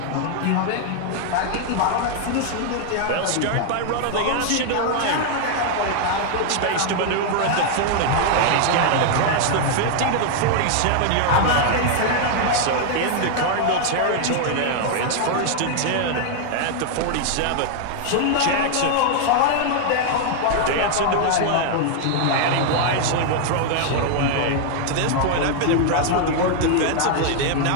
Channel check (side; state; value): both; different; correlation 0.00